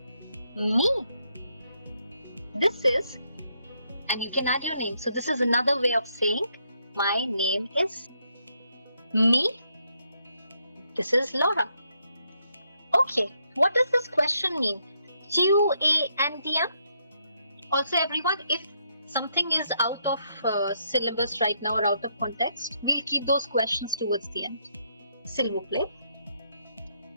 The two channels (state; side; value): inverted; both; correlation -0.76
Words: me. This is, and you can add your name. So this is another way of saying my name is me. This is Laura. Okay, what does this question mean? Tu es indien? Also everyone, if something is out of syllabus right now or out of context, we'll keep those questions towards the end. S'il vous plaît.